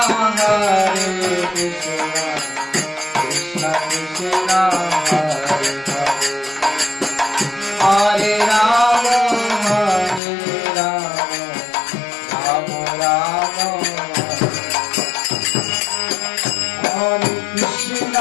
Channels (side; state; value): right; drops out; at 10.2 s